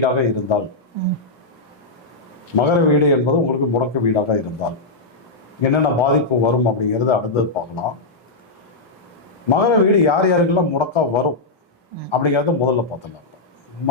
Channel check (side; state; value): right; quieter; 3.2 dB